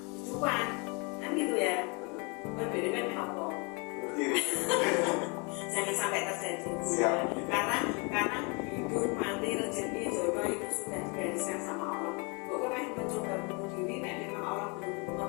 kan gitu ya. Berbeda kan apa? Jangan sampai terjadi. Karena hidup, mati, rezeki, jodoh itu sudah digariskan sama Allah. Pokoknya mencoba bunuh diri, dan memang Allah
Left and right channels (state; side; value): quieter; right; 30.9 dB